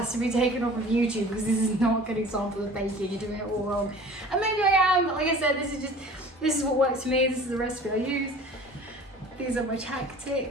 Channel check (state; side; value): normal; both; correlation 0.44